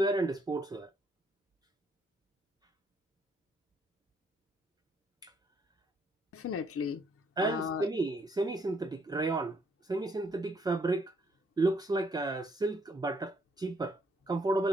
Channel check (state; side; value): normal; both; correlation 0.69